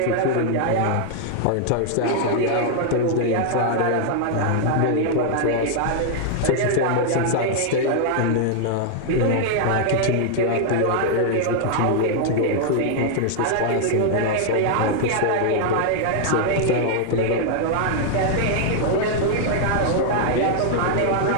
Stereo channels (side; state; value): both; different; correlation -0.01